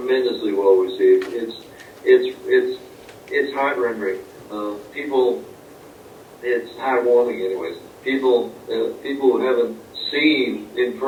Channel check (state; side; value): identical; both; correlation 1.00